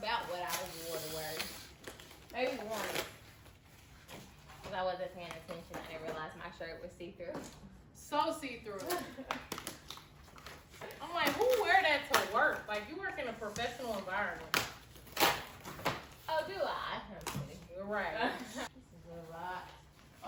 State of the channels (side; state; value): both; identical; correlation 1.00